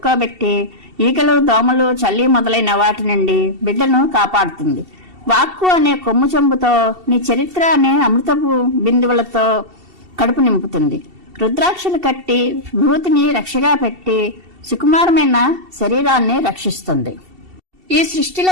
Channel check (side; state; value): left; late; 2.7 ms